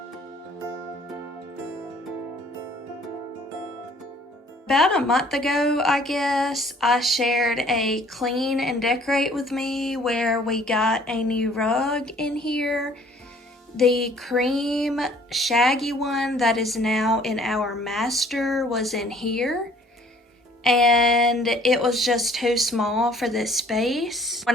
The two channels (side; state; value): both; normal; correlation 0.56